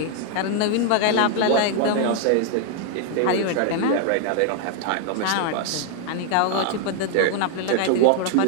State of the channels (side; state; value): both; different; correlation 0.00